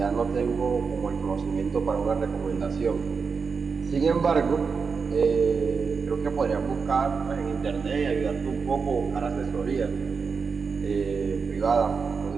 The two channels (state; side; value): quieter; left; 5.3 dB